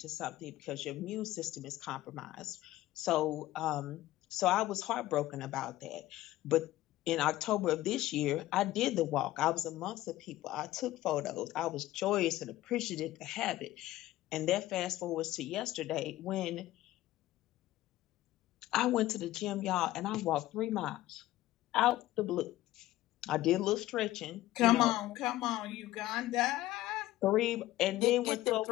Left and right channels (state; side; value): quieter; right; 15.7 dB